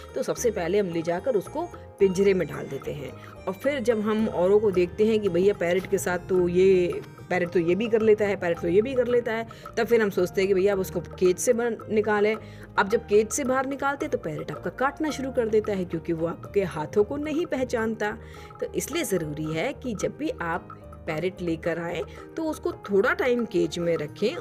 तो सबसे पहले हम ले जाकर उसको पिंजरे में डाल देते हैं, और फिर जब हम औरों को देखते हैं कि भैया पैरेट के साथ तो ये पैरेट तो ये भी कर लेता है, पैरेट तो ये भी कर लेता है, तब फिर हम सोचते हैं कि भैया अब उसको केज से निकालें। अब जब केज से बाहर निकालते तो पैरेट आपका काटना शुरू कर देता है, क्योंकि वो आपके हाथों को नहीं पहचानता। तो इसलिए ज़रूरी है कि जब भी आप पैरेट लेकर आए तो उसको थोड़ा टाइम केज में रखें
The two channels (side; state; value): both; identical; correlation 1.00